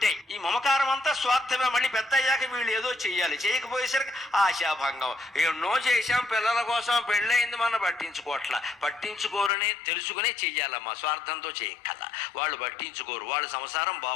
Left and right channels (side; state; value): right; drops out; at 9.5 s